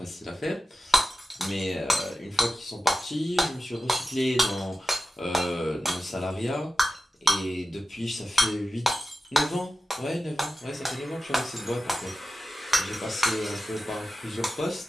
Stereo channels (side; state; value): both; normal; correlation 0.93